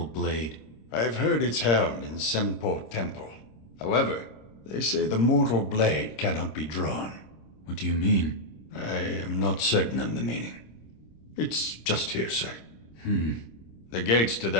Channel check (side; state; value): right; late; 26 ms